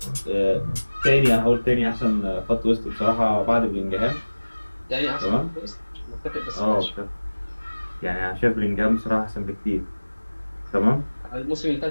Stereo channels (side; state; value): both; inverted; correlation -1.00